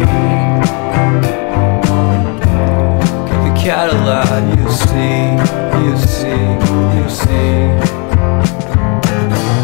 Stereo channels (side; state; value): right; quieter; 33.8 dB